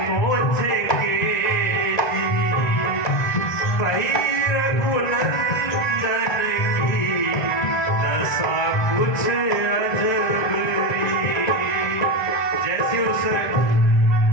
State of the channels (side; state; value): right; late; 1.0 ms